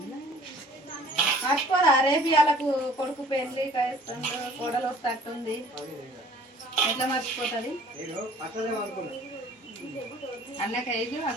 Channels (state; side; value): normal; both; correlation 0.53